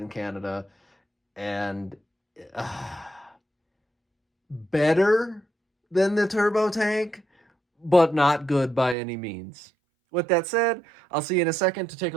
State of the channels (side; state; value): left; drops out; at 9.0 s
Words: Canada. And better than the turbo tank, but not good by any means. With that said, I'll see you in a second to take